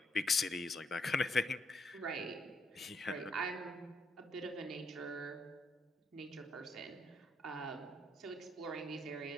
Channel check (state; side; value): normal; both; correlation 0.74